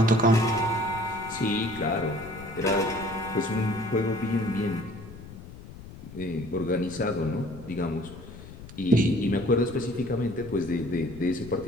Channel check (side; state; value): left; noise; rumble, 15 dB below the sound